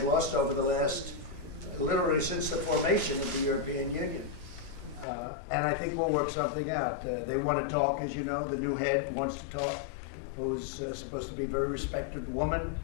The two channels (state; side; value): drops out; right; at 5.1 s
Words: lost over the last, literally since the formation of the European Union. And I think we'll work something out. They want to talk, as you know, the new head wants to talk, who's supposed to be a very respected woman,